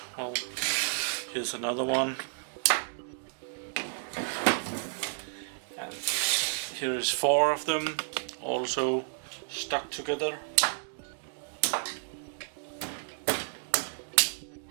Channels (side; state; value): left; silent; digital silence